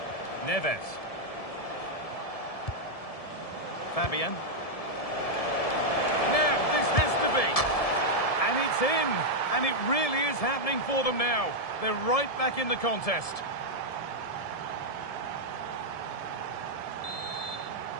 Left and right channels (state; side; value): late; right; 1.7 ms